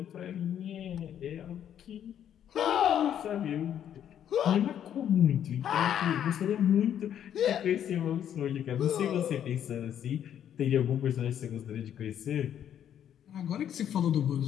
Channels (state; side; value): quieter; right; 9.8 dB